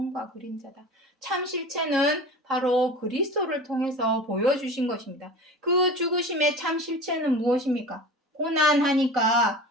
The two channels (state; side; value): normal; both; correlation 0.35